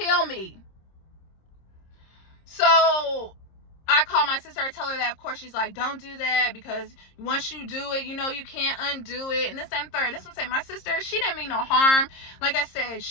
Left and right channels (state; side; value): late; right; 26 ms